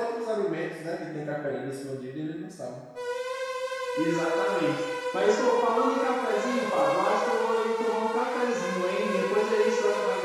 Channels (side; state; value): both; identical; correlation 1.00